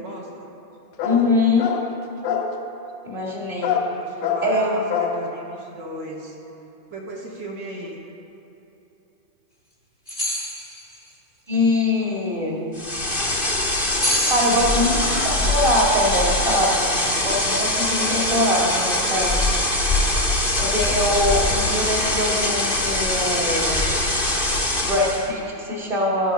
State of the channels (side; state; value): right; late; 2.5 ms